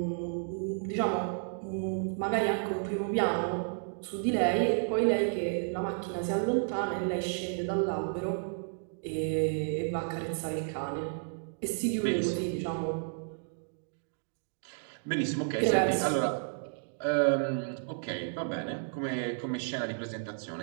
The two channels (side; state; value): left; silent; digital silence